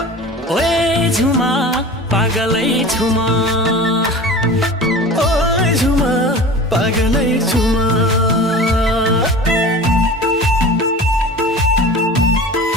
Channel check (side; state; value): both; normal; correlation 0.37